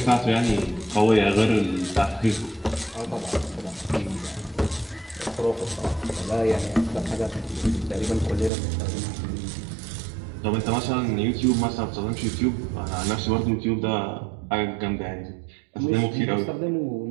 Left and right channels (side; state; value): left; drops out; at 8.5 s